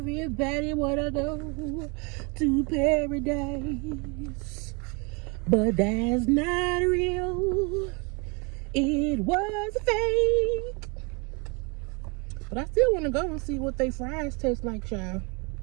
wanna go to paradise. But that's not real, it was fake. But I still wanna go and see what they fries taste like, child.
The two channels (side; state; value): left; quieter; 31.3 dB